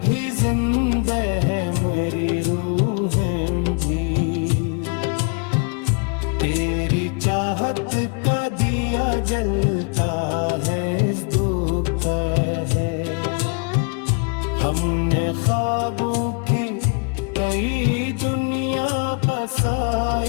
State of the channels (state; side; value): quieter; right; 36.3 dB